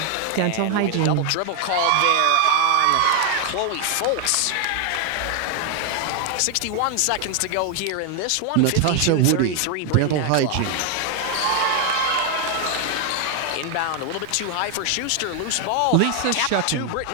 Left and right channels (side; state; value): both; different; correlation 0.00